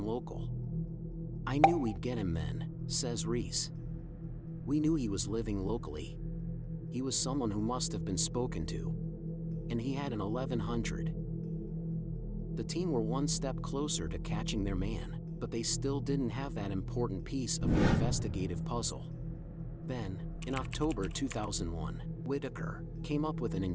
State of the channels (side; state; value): both; identical; correlation 1.00